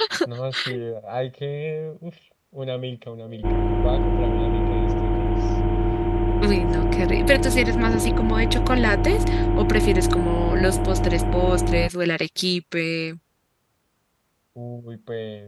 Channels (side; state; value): both; identical; correlation 1.00